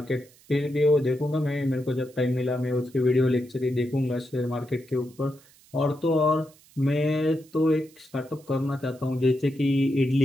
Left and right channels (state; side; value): noise; right; hiss, 27 dB below the sound